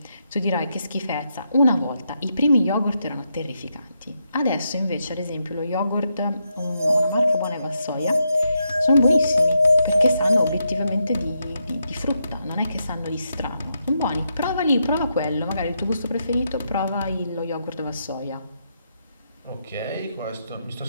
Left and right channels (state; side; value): inverted; both; correlation -0.82